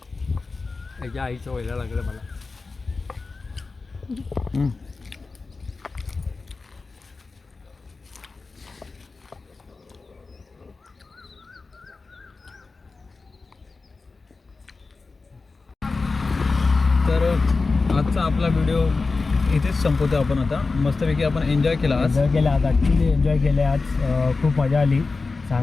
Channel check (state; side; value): quieter; right; 4.0 dB